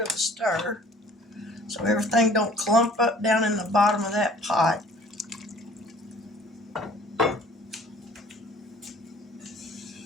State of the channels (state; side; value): normal; both; correlation 0.52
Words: a stir so everything don't clump up down in the bottom of that pot.